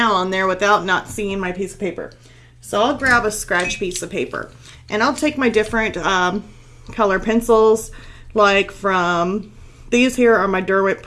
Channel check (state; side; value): identical; both; correlation 1.00